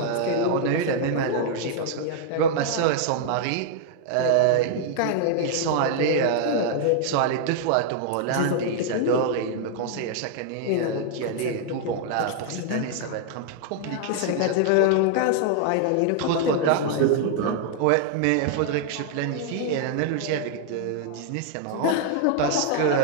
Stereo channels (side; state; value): both; different; correlation 0.00